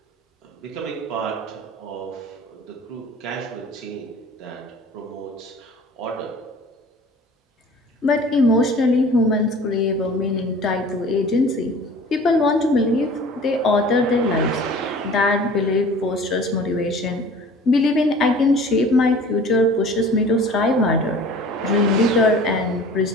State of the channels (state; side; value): normal; both; correlation 0.45